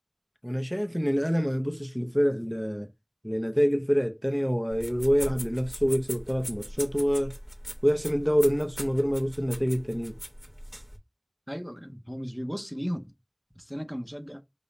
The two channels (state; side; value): identical; both; correlation 1.00